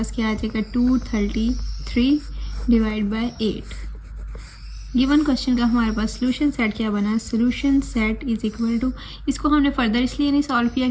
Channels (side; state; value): both; identical; correlation 1.00